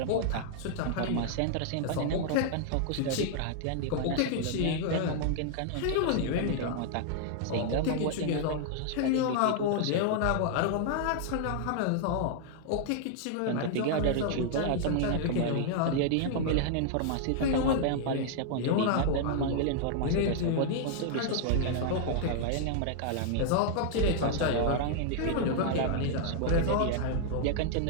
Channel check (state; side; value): different; both; correlation -0.01